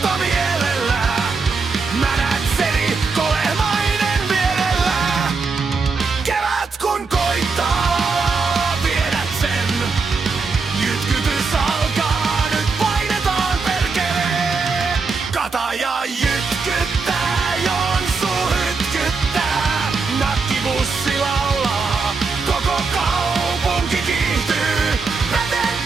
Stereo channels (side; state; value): left; quieter; 4.5 dB